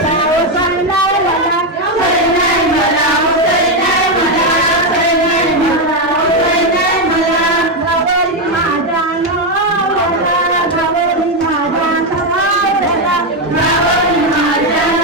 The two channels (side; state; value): both; normal; correlation 0.06